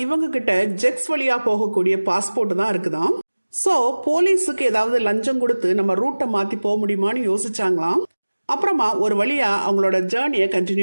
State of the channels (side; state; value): both; inverted; correlation -1.00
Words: இவங்க கிட்ட ஜெக்ஸ் வழியா போகக்கூடிய பாஸ்போர்ட் தான் இருக்குதாம். ஸோ போலீஸுக்கு ஏதாவது லஞ்சம் கொடுத்து நம்ம ரூட்டை மாற்றி போக முடியுமான்னு யோசிச்சாங்களாம். அப்புறமா ஒரு வழியா அவங்களோட ஜேர்னியை